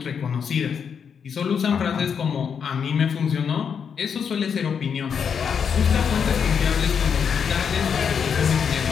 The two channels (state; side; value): quieter; right; 7.0 dB